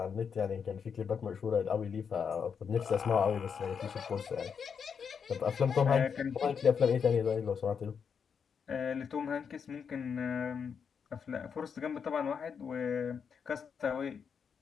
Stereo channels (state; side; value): quieter; right; 6.6 dB